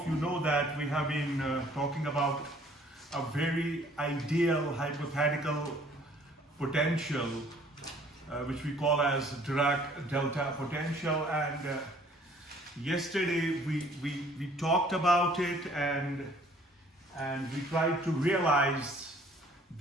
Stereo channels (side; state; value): both; normal; correlation 0.57